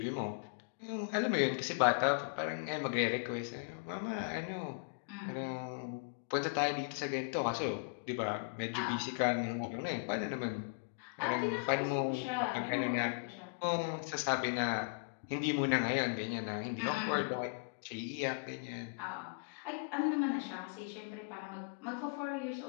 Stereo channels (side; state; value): right; quieter; 36.1 dB